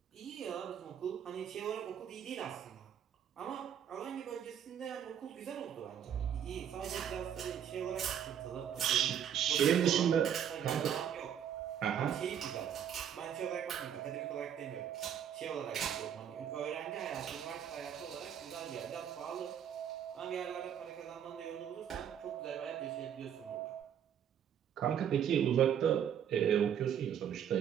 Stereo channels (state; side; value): quieter; left; 9.1 dB